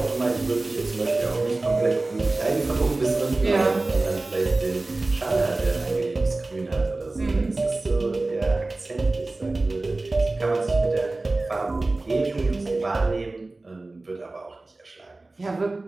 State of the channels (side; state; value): left; quieter; 3.1 dB